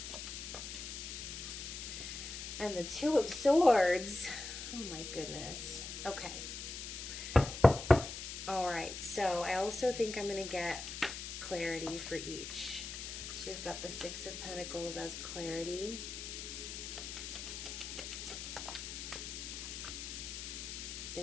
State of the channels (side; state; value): left; noise; hiss, 7 dB below the sound